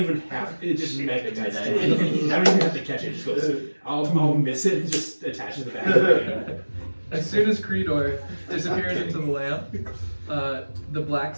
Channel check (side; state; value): both; inverted; correlation -1.00